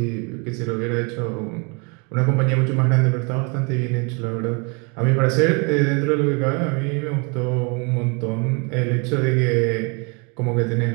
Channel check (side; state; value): left; quieter; 32.6 dB